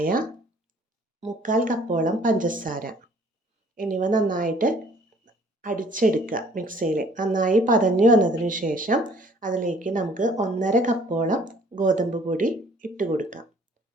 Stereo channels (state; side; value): normal; both; correlation 0.57